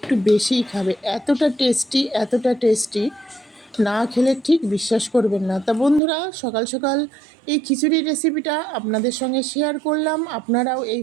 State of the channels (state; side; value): drops out; left; at 6.0 s